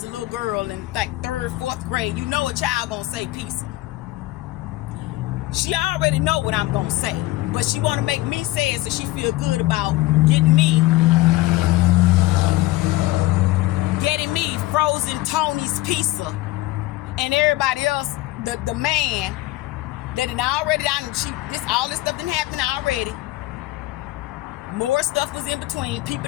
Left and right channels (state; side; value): quieter; right; 18.0 dB